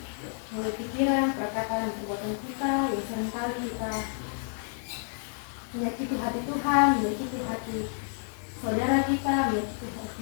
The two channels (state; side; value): silent; right; 58 dB below the other